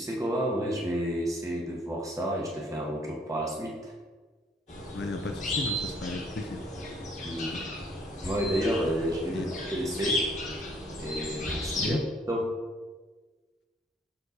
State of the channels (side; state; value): both; normal; correlation 0.62